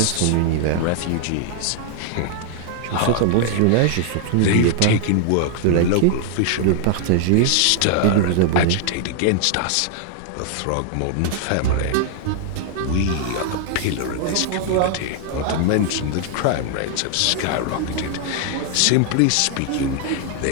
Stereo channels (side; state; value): both; different; correlation 0.00